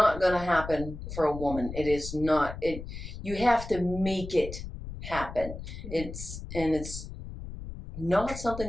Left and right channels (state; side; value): noise; left; rumble, 10 dB below the sound